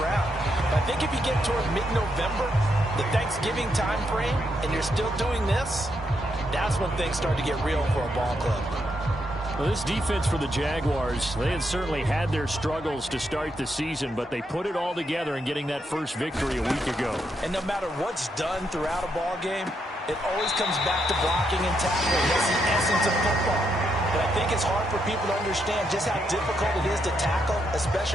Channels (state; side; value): normal; both; correlation 0.79